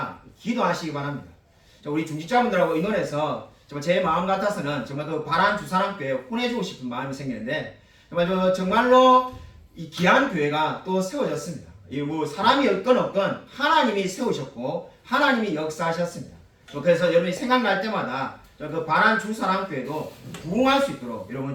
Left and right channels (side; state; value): both; identical; correlation 1.00